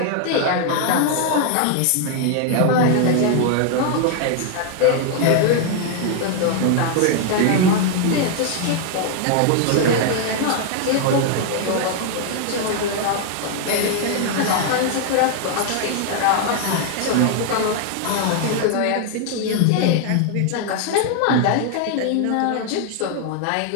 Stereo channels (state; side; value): different; both; correlation 0.00